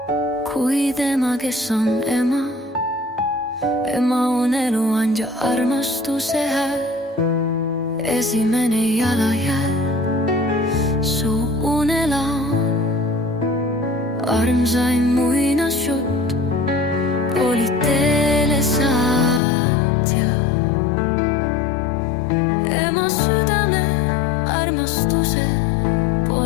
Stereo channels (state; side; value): drops out; right; at 19.4 s